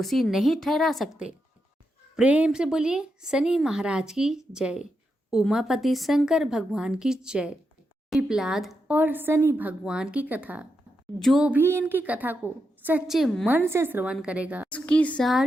नहीं ठहरा सकते। प्रेम से बोलिए शनि महाराज की जय, उमापति शंकर भगवान की जय। पिपलाद और शनि भगवान की कथा, जो भी इनकी कथा को सच्चे मन से श्रवण करेगा उसकी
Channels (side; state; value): both; normal; correlation 0.85